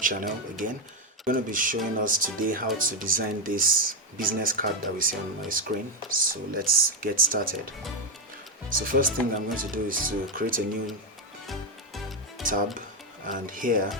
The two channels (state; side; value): normal; both; correlation 0.06